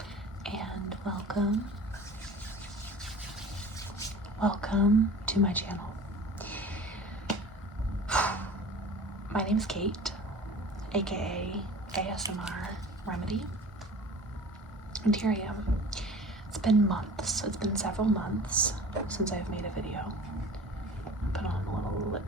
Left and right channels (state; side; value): normal; both; correlation 0.41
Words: and welcome to my channel. My name is Kate, aka ASMR Remedy, and here I am. It's been months, it's been several months since I've made a video. Put on a little